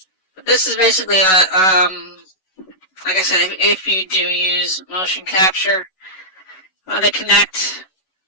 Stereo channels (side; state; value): right; late; 11 ms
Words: But this is basically like I said, if you do use motion capture, they connect.